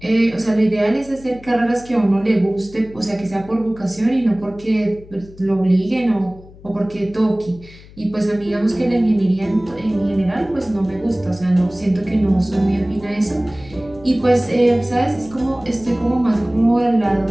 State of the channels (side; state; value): left; noise; hum, 21 dB below the sound